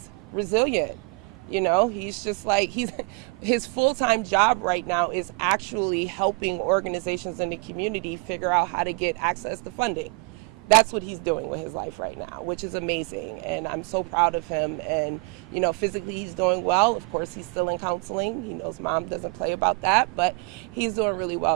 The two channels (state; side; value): quieter; left; 29.4 dB